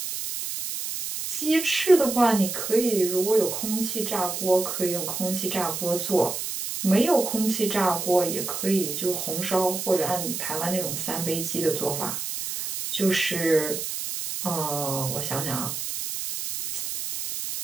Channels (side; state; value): right; noise; hiss, 4 dB below the sound